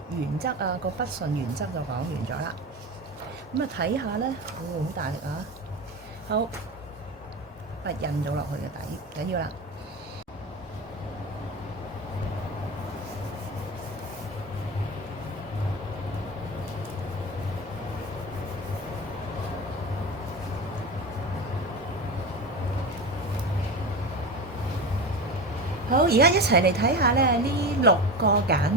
原則啊，個筆順原則就講完咗啦。咁啊睇下咧，好大力啊！好，筆印咗落去嘅底，緊要啦。好，而家一齊嚟睇下咧，呢6個簡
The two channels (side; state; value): both; normal; correlation 0.25